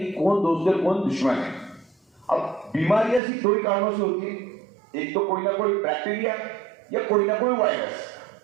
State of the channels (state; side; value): drops out; left; at 3.2 s